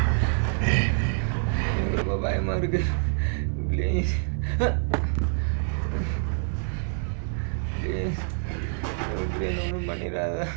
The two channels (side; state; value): left; silent; 61 dB below the other